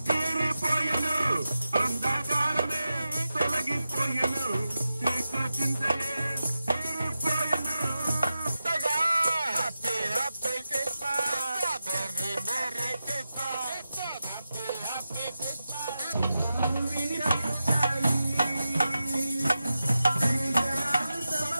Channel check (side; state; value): both; inverted; correlation -0.91